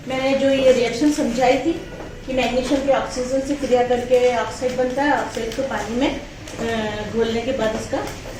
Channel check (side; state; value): both; identical; correlation 1.00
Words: मैंने जो ये रिएक्शन समझाई थी कि मैग्नीशियम के ऑक्सीजन से क्रिया करके ऑक्साइड बनता है। ऑक्साइड को पानी में घोलने के बाद इसका